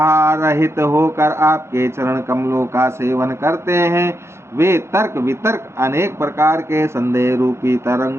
होकर आपके चरण कमलों का सेवन करते हैं, वे तर्क वितर्क अनेक प्रकार के संदेह रूपी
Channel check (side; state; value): left; late; 0.13 ms